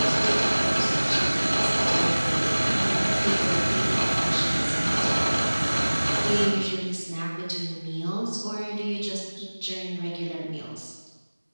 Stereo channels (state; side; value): inverted; both; correlation -1.00